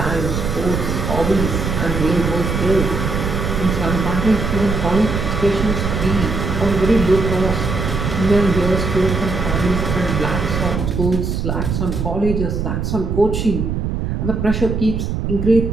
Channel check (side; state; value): right; noise; rumble, 2 dB below the sound